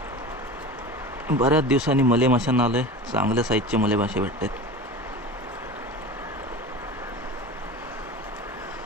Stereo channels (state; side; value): normal; both; correlation 0.32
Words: बऱ्याच दिवसांनी मले माशांना आलोय. चांगल्या साईजचे मले मासे भेटतात.